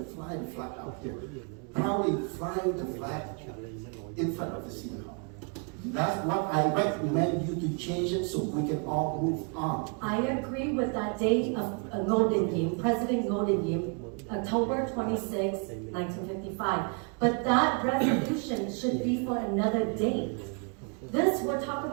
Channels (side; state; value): left; quieter; 37.1 dB